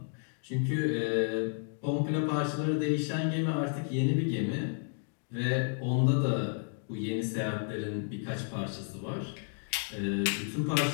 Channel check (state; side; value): silent; right; 55 dB below the other